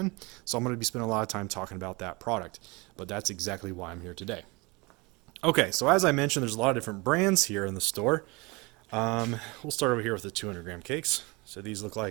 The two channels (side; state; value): left; quieter; 26.1 dB